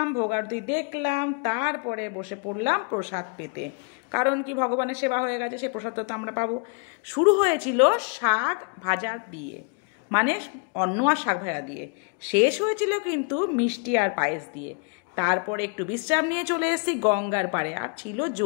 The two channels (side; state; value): right; quieter; 35.2 dB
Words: ভোগ আরতি দেখলাম, তারপরে বসে পড়লাম প্রসাদ পেতে। কারণ কি, ভগবানের সেবা হয়ে গেছে, সে প্রসাদ তো আমরা পাবো। শুরু হয়েছিল শাক ভাজা দিয়ে, মানে অন্ন আর শাক ভাজা দিয়ে। শেষ হয়েছিল কিন্তু মিষ্টি আর পায়েস দিয়ে। তারপরে একটু বিশ্রাম নিয়ে চলে এসেছি গঙ্গার পাড়ে, আর ছিল